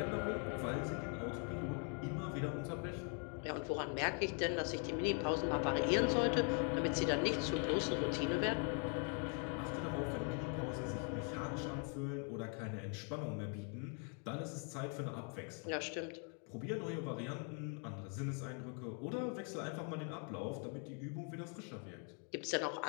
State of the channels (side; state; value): right; quieter; 39.9 dB